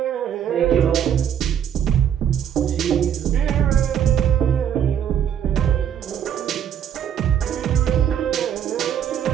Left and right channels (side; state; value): left; quieter; 9.2 dB